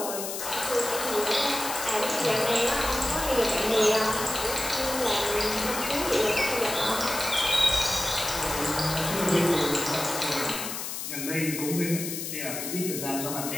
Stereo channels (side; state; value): left; noise; hiss, 5 dB below the sound